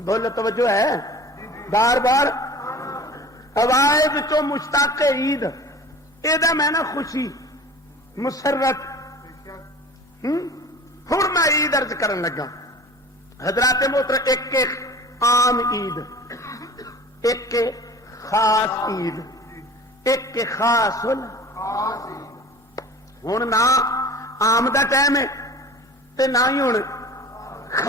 بولو توجہ ہے بار بار آواز چو مشتاق عید یہ میں نا خوشی مسرت ہوں میں عید ارج کرن لگا حضرات محترم، ایک عام عید، ایک خاص عید، ایک خاص ہوں نہ عام دا ٹائم ہے تے نہ ہی ہوں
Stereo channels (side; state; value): both; normal; correlation 0.41